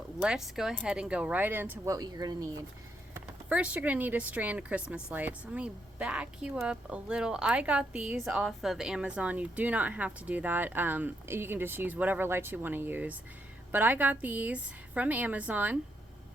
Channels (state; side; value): normal; both; correlation 0.78